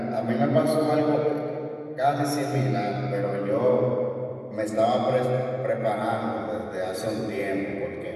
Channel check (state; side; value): identical; both; correlation 1.00